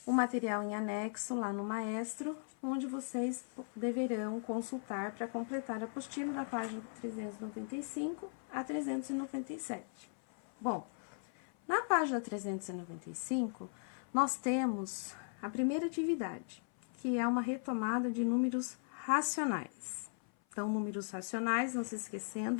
o material em anexo lá no Maestro, onde vocês deverão consultar para completar a apostila da página 395 a 397. Bom, na página 395, nós temos a primeira atividade, que é uma retomada de números racionais. Então, números racionais, não se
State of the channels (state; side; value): silent; right; 52 dB below the other